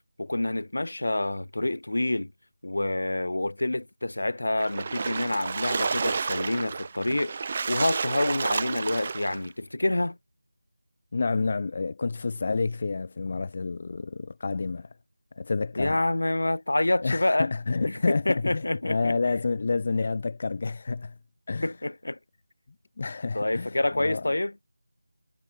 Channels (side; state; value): both; inverted; correlation -0.97